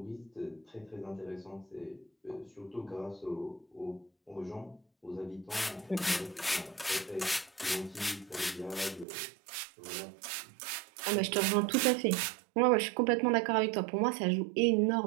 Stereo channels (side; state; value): left; drops out; at 9.1 s